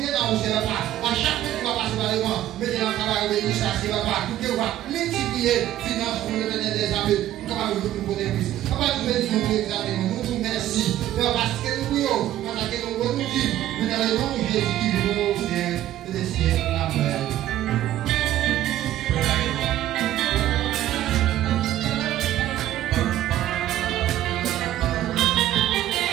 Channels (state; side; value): quieter; left; 13.1 dB